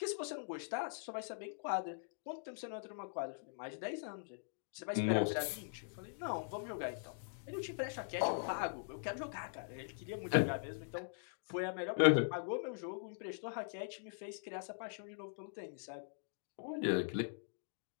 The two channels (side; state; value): right; silent; digital silence